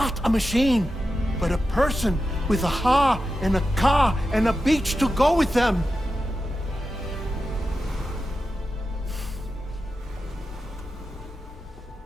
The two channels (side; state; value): both; normal; correlation 0.91